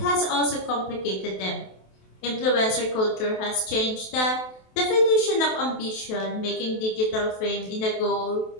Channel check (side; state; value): right; late; 27 ms